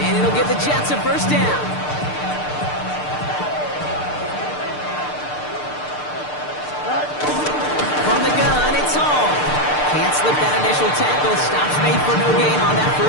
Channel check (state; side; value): late; right; 6.7 ms